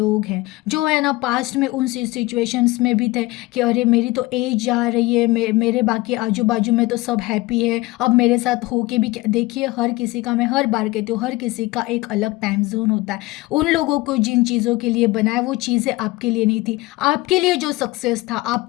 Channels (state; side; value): quieter; right; 20.7 dB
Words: हैं जो है ना पास्ट में उन सिचुएशंस में भी थे कि अरे मेरी तो एज जा रही है, मेरे बाकी आजू बाजू में तो सब हैप्पी है, अब मेरे साथ हो के भी क्या। देखिए हर किसी का, मैं हर बार कहती हूँ, हर किसी का एक अलग टाइम जोन होता है। उन लोगों को जिन चीज़ों के लिए बनाया वो चीज़ें आपके लिए नहीं थी। आपके लिए जो सक्सेस था,